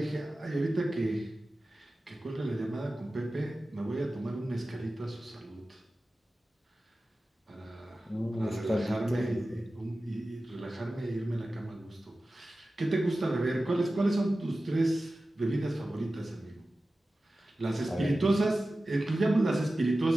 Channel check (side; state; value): both; normal; correlation 0.95